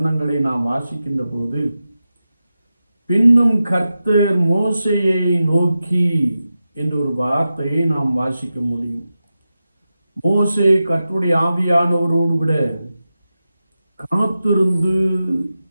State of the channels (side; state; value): both; inverted; correlation -0.92